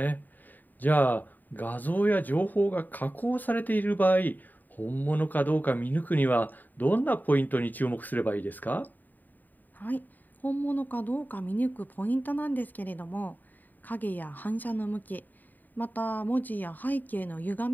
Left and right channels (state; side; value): late; right; 0.087 ms